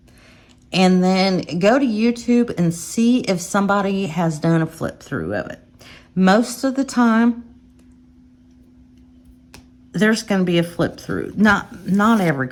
and then go to YouTube and see if somebody has done a flip through of it. Most of the time, there's going to be a flip through. Not every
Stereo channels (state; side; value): identical; both; correlation 1.00